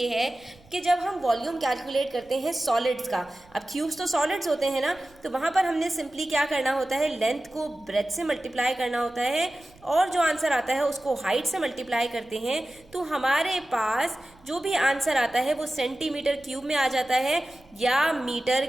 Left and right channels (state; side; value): noise; right; rumble, 28 dB below the sound